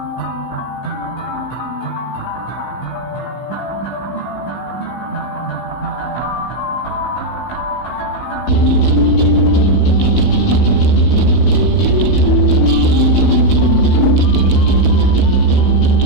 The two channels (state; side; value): late; right; 16 ms